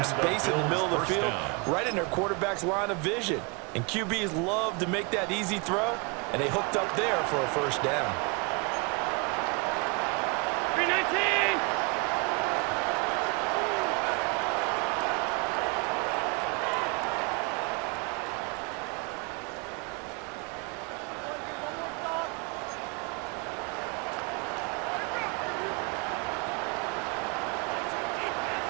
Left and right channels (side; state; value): left; quieter; 31.3 dB